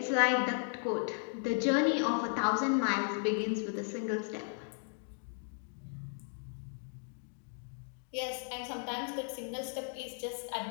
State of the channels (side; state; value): right; silent; 54 dB below the other